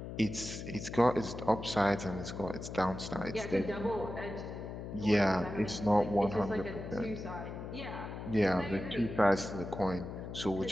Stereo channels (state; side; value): noise; left; hum, 8 dB below the sound